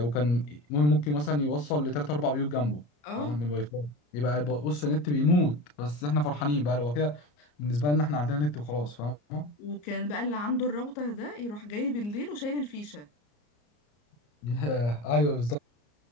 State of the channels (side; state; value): right; late; 34 ms